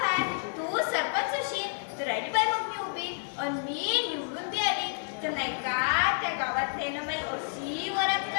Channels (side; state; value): right; silent; digital silence